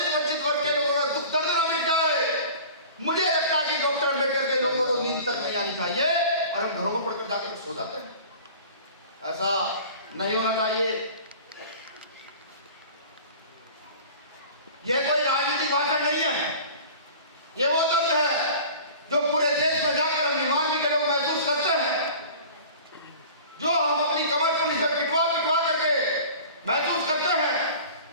वंचित वर्ग के लोगों का दुख दर्द ना मिट जाए, मुझे लगता है कि डॉक्टर अम्बेडकर के लोगों को नींद तक नहीं आनी चाहिए और हम घरों में पढ़कर जाकर सो जाते हैं। ऐसा नहीं होना चाहिए। यह कोई राजनीतिक भाषण नहीं है, ये वो दर्द है जो पूरे देश में जाकर हम भीमार्मी के लोग महसूस करते हैं, जो हम अपनी कमर पुलिस से पिटवा करके महसूस करते हैं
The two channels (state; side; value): inverted; both; correlation -0.41